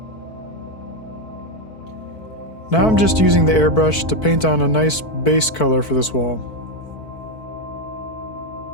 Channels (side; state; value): right; late; 4.6 ms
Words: Now I'm just using the airbrush to paint on a nice base color for this wall.